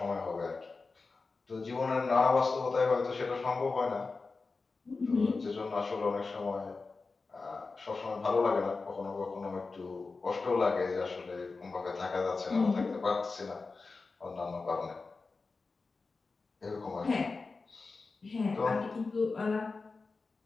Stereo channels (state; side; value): quieter; right; 4.1 dB